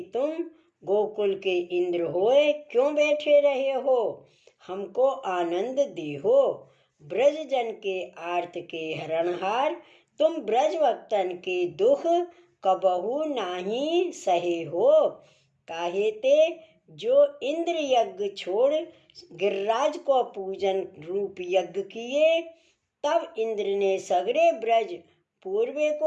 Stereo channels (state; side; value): identical; both; correlation 1.00